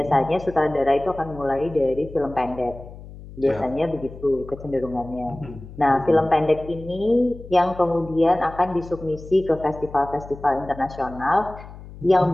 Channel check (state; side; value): noise; left; hum, 16 dB below the sound